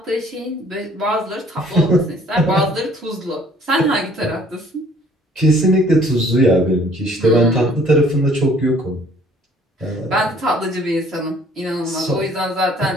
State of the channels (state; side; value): normal; both; correlation 0.57